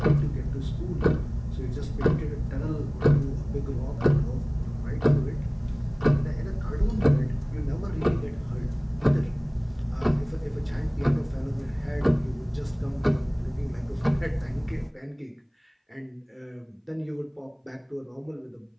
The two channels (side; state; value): both; identical; correlation 1.00